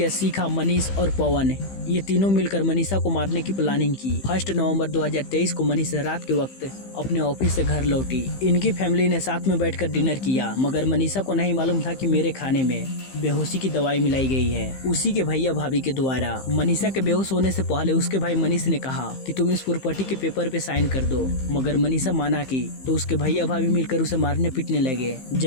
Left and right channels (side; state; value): right; late; 15 ms